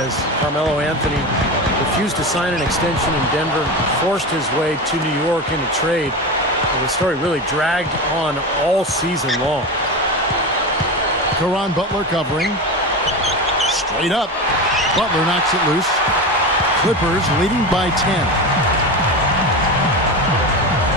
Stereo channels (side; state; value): both; normal; correlation 0.23